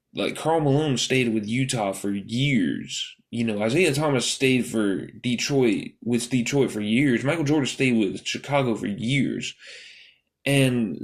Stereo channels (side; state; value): both; identical; correlation 1.00